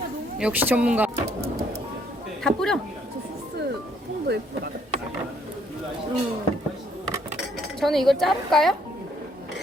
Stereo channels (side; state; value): both; normal; correlation 0.67